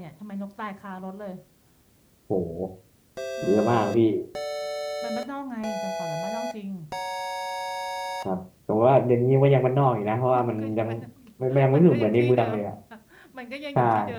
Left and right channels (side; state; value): both; identical; correlation 1.00